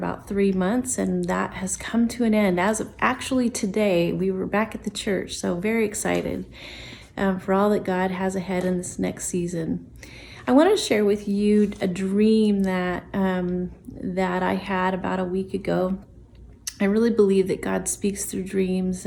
3 months, and that has come to an end. As of actually today, we were back at the church, so very excited for all that God has ahead in this next season. I want to share with you a dream that I had about a week ago. I really believe that God speaks through dreams,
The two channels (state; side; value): identical; both; correlation 1.00